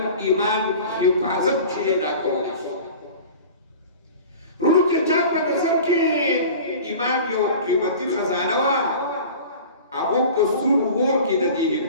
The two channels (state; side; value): inverted; both; correlation -0.39